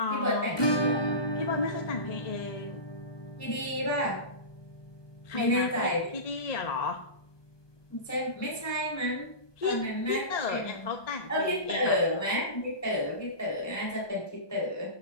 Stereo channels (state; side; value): late; right; 1.2 ms